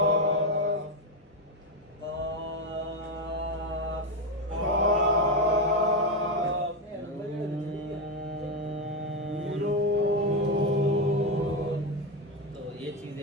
قاف. قاف. نون. تو یہ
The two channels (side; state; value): both; normal; correlation 0.09